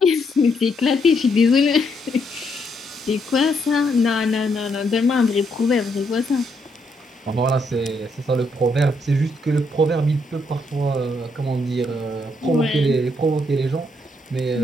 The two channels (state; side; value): normal; both; correlation 0.75